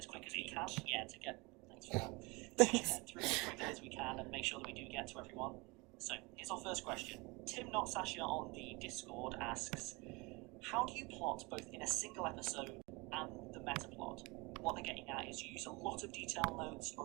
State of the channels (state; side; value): quieter; left; 26.1 dB